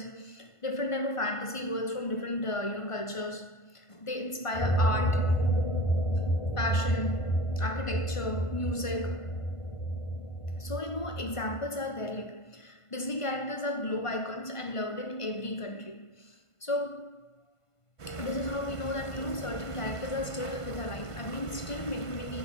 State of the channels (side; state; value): right; late; 1.5 ms